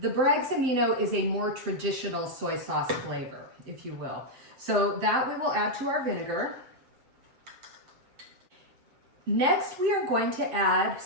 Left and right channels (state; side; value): late; left; 7.5 ms